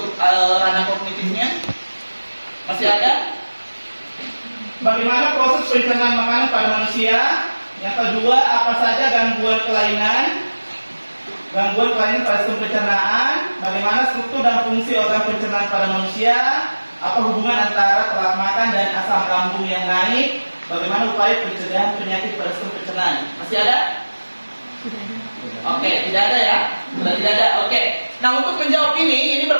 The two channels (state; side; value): inverted; both; correlation -1.00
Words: ranah kognitifnya. Masih ada? Bagaimana proses pencernaan makanan pada manusia? Yang kedua, apa saja gangguan kelainan pada sistem pencernaan? Bagaimana struktur dan fungsi organ pencernaan pada manusia? Apa hubungan antara telat makan dan asam lambung yang naik? Bagaimana upaya pencegahan penyakit pada sistem pencernaan? Masih ada? Oke, tidak ada ya? Sudah tidak ada. Oke. Nah, untuk menjawab ini